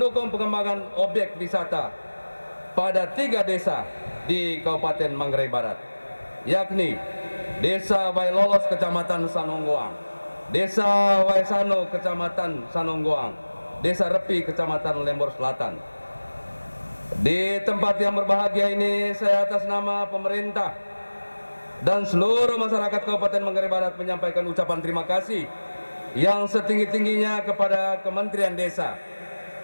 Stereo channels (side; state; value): both; inverted; correlation -1.00